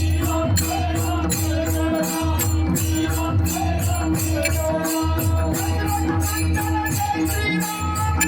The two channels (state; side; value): identical; both; correlation 1.00